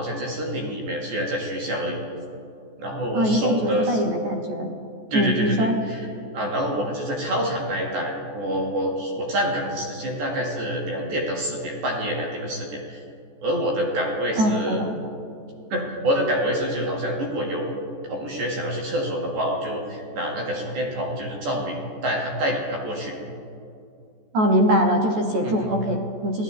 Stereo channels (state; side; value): late; left; 14 ms